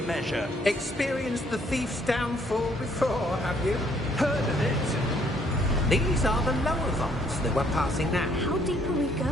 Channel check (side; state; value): both; normal; correlation 0.65